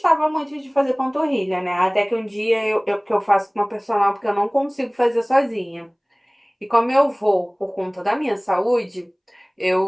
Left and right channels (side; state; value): both; identical; correlation 1.00